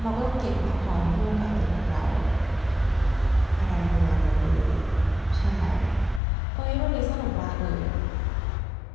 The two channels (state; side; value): drops out; right; at 6.2 s